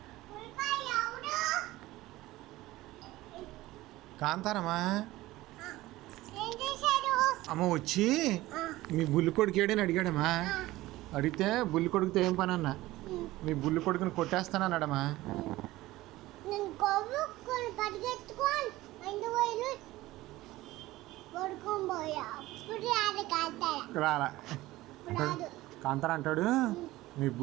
కాంతారమ్మా. అమ్మ వచ్చి మీ బుల్లి కొడుకు ఏడని అడిగాడమ్మా. అడిగితే బుల్లి కొడుకుతో ఏం పని అన్నా, మీ బుల్లి కొడుకుని కొట్టేస్తానన్నాడమ్మా. రాలా కాంతారా అంటాడు, మీ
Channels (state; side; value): quieter; left; 17.7 dB